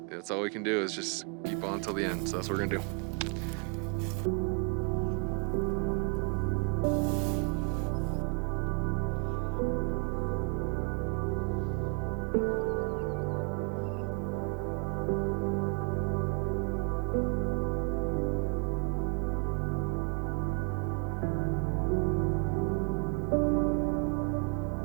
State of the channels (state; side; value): quieter; left; 37.0 dB